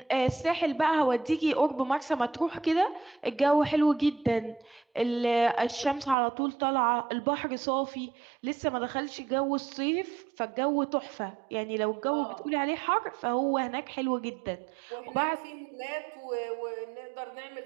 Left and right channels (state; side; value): drops out; left; at 6.2 s